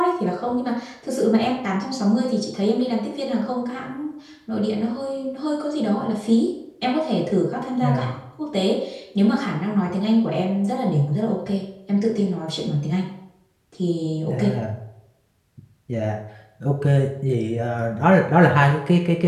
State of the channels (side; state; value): both; identical; correlation 1.00